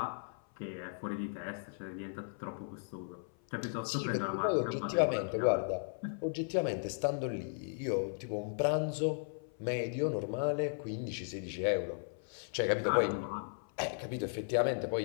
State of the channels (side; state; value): right; silent; 54 dB below the other